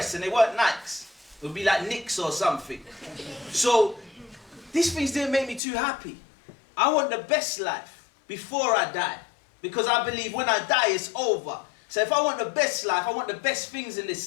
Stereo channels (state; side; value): drops out; right; at 5.6 s